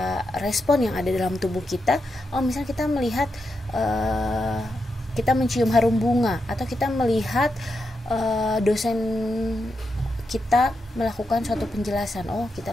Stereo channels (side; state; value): both; normal; correlation 0.85